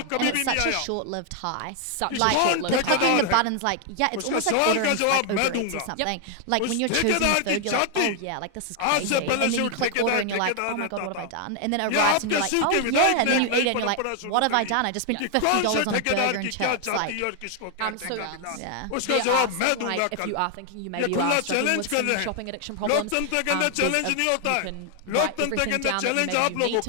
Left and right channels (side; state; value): both; different; correlation 0.00